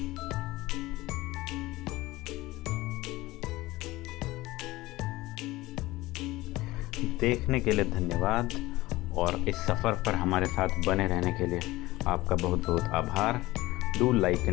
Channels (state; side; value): quieter; right; 18.7 dB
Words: देखने के लिए धन्यवाद, और इस सफ़र पर हमारे साथ बने रहने के लिए आपका बहुत बहुत आभार। Do like